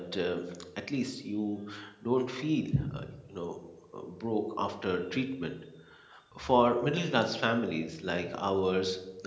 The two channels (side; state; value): both; identical; correlation 1.00